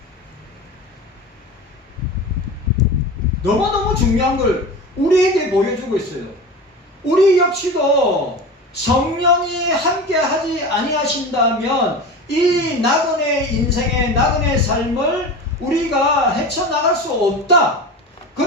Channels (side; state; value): both; normal; correlation 0.30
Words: 너무너무 중요한 걸 우리에게 보여주고 있어요. 우리 역시도 성령이 함께 하지 아니하신다면 이 나그네 인생의 나그네 삶을 우리가 헤쳐나갈 수 없다.